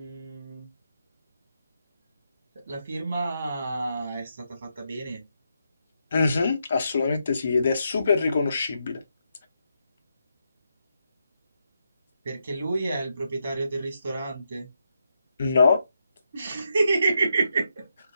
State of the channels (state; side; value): inverted; both; correlation -0.82